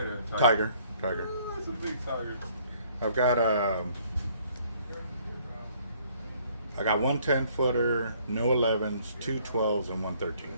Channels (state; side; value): inverted; both; correlation -0.62